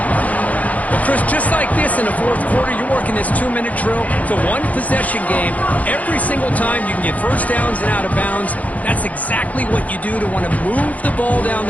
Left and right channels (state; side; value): late; right; 0.072 ms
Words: Well, Chris, just like this in the fourth quarter, you're working this 2-minute drill. It's a one-possession game. Every single time you can get first downs and out of bounds. That's exactly what you do to want to move the ball down